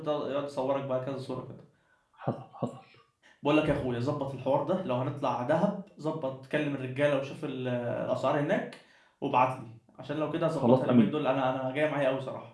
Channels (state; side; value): identical; both; correlation 1.00